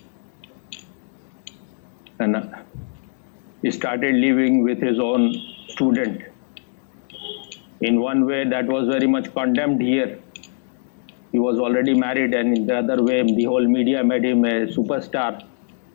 he started living with his own student. In one way, that was very much condemned here. He was already married, and in the other way, the whole media made him a superstar.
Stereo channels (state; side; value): silent; right; digital silence